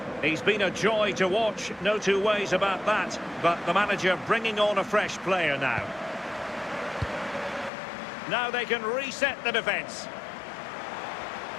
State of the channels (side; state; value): right; drops out; at 7.7 s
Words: He's been a joy to watch, no two ways about that. But the manager bringing on a fresh player now. Now they can reset the defence.